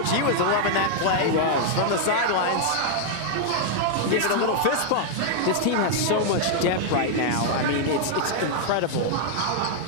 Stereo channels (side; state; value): both; different; correlation -0.01